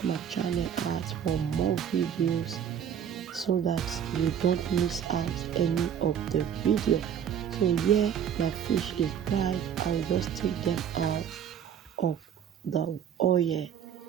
my channel out for more videos so that you don't miss out any of the video. So yeah, my fish is dried. I will just take them out of the oil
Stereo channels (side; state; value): left; quieter; 8.7 dB